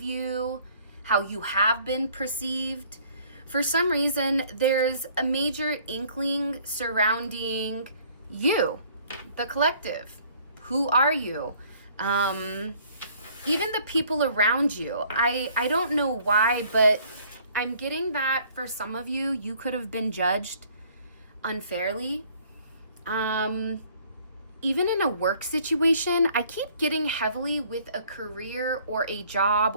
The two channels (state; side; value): inverted; both; correlation -0.58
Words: how you have been perceived. For some reason, there's a major inkling surrounding you, the collective. Who are you? Even the people around you. I don't know why, but I'm getting that for some of you, you could have been judged unfairly. Even in a work situation, I keep getting heavily with a career or a